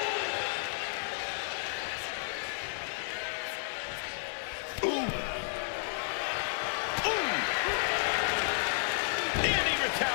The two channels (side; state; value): right; silent; digital silence